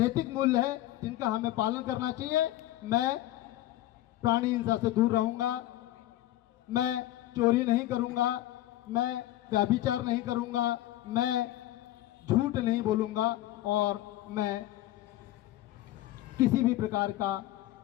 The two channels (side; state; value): right; quieter; 15.0 dB